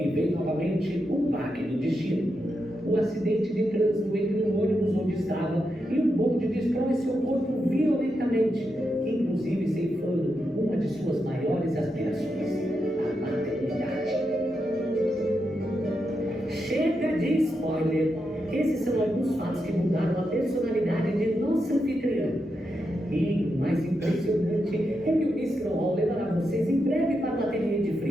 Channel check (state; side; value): normal; both; correlation 0.85